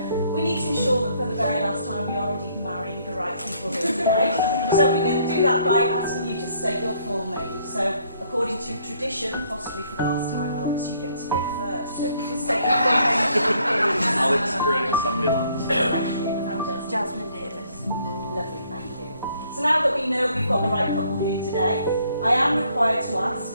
we need to ensure that for the very last time we are indeed marrying the right people here today. So we're going to do that by asking you to state your full name. So according to tradition, and possibly for the last time, Alex, you get to go first. So if you can state your full name, please. Alex Sandilands. Thank you. And Jasmine Davis. Lovely, thank you. So now that we know we've got the right couple here today, I am required to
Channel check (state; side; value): inverted; both; correlation -0.66